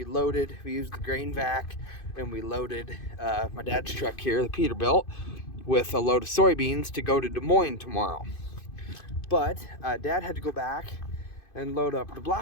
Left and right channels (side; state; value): right; late; 2.5 ms